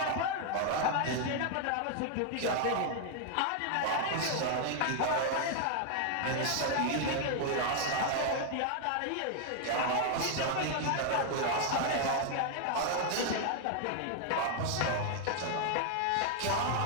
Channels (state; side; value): different; both; correlation 0.00